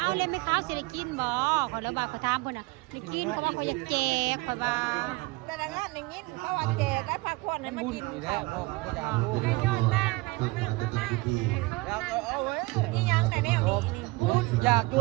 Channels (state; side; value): quieter; left; 23.4 dB